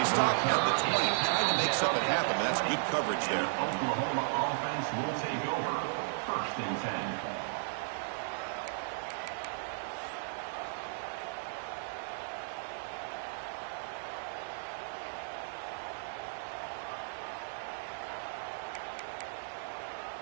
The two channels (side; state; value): left; silent; digital silence